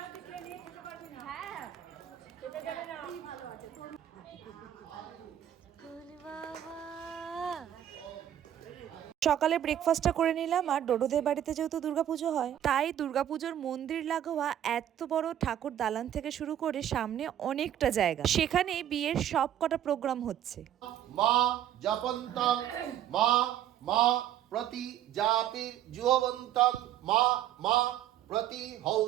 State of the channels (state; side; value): quieter; left; 11.1 dB